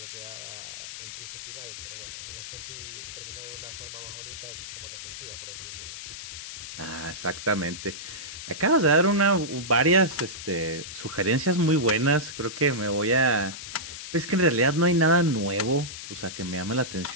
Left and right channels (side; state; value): left; noise; hiss, 10 dB below the sound